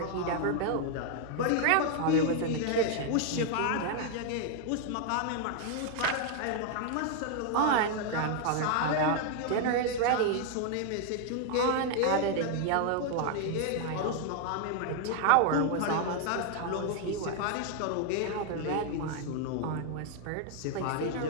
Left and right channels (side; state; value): both; different; correlation 0.00